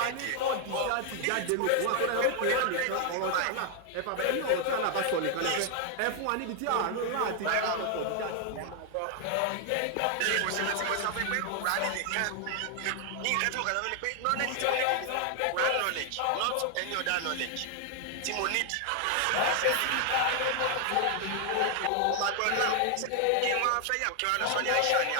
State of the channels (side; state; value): both; different; correlation 0.00